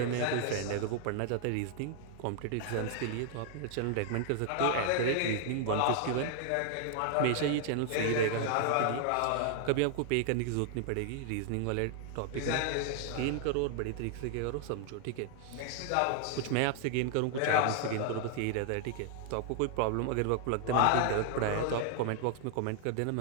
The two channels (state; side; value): different; both; correlation 0.00